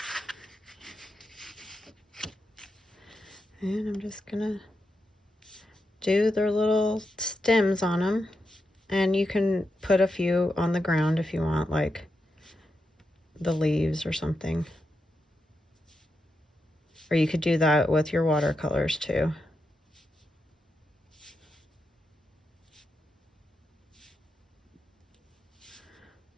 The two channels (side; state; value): both; normal; correlation 0.86